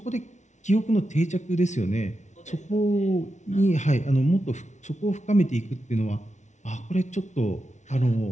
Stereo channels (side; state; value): right; late; 0.34 ms